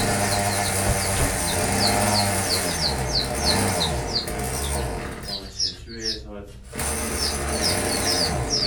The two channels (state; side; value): identical; both; correlation 1.00